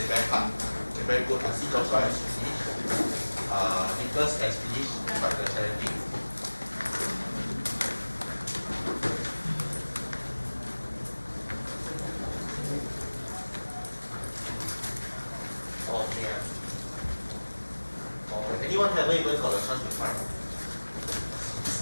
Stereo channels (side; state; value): both; inverted; correlation -1.00